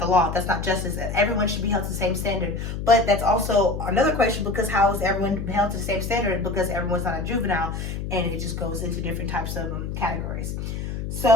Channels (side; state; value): left; noise; hum, 5 dB below the sound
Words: the law, that's not justice. Everyone should be held to the same standard. But that's also another question, because how is everyone held to the same standard? Because everyone's not a juvenile, and it just goes into different types of categories.